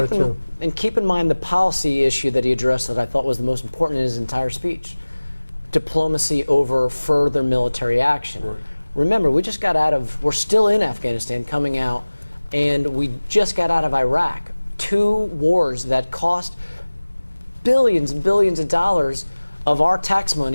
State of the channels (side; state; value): both; inverted; correlation -1.00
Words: to... And keep in mind the policy issue that he addressed that I thought was the most important in his entire speech. Diplomacy over further military action. Right. Remember, we're still in Afghanistan coming out, and we just got out of Iraq. 2 wars that cost billions and billions of dollars of our tax